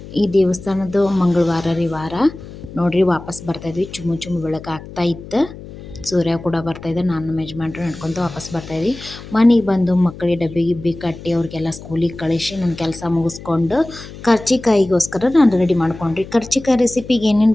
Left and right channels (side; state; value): left; noise; hum, 15 dB below the sound